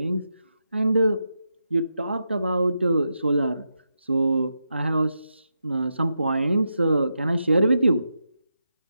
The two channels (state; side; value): inverted; both; correlation -0.87